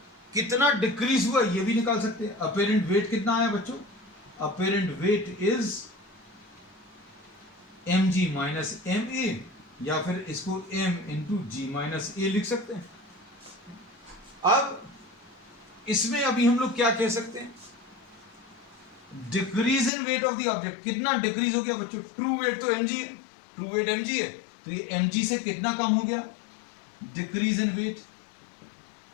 कितना डिक्रीज हुआ ये भी निकाल सकते हैं। apparent weight कितना आया बच्चों, apparent weight is mg minus ma, या फिर इसको m इंटू जी माइनस ए लिख सकते हैं। अब इसमें अभी हम लोग क्या कह सकते हैं, decrease in weight of the object. कितना डिक्रीज हो गया बच्चों, ट्रू वेट तो mg है, ट्रू वेट mg है, तो ये mg से कितना कम हो गया, decrease in weight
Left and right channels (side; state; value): right; drops out; at 19.9 s